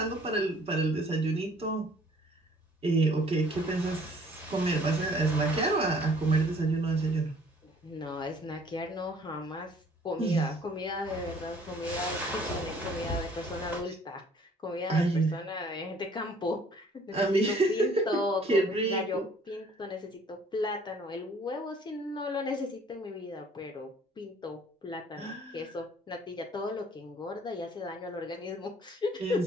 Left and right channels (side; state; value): both; normal; correlation 0.56